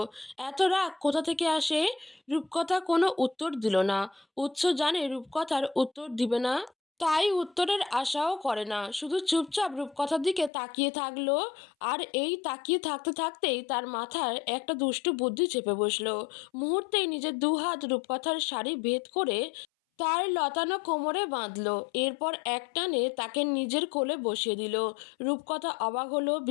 এত রাগ কোথা থেকে আসে? রূপকথা কোনো উত্তর দিল না। উৎস জানে রূপকথার উত্তর দিবে না, তাই উত্তরের আশাও করে না, শুধু চুপচাপ রূপকথার দিকে তাকিয়ে থাকলো। আর এই তাকিয়ে থাকতে থাকতেই তার মাথায় একটা দুষ্টু বুদ্ধি চেপে বসলো। মুহূর্তেই নিজের দুহাত রূপকথার শাড়ি ভেদ করে তার লতানো কোমরে বাঁধলো। এরপর এক টানে তাকে নিজের কোলে বসিয়ে দিল। রূপকথা অবাক হলো,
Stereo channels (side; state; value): right; drops out; at 10.5 s